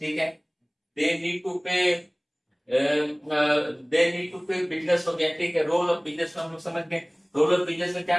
है, दे नीड टू पे बिजनेस हो गया। ठीक है, रोल ऑफ बिजनेस हम लोग समझ गए। रोल ऑफ बिजनेस में क्या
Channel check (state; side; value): identical; both; correlation 1.00